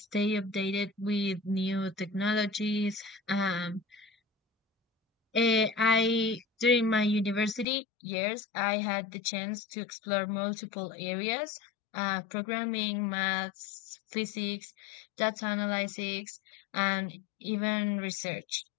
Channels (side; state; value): right; drops out; at 7.7 s